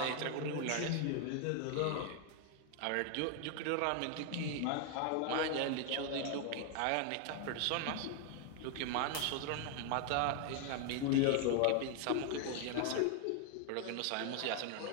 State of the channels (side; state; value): both; different; correlation 0.00